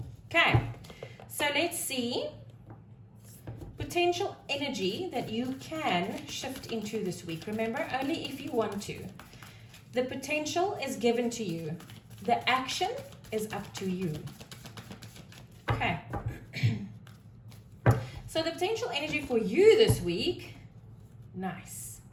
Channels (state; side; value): identical; both; correlation 1.00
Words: Okay. So, let's see. Potential energy that you can shift into this week. Remember, only if you want to. The potential is given to you. The action is up to you. Okay. So the potential energy for you this week, nice,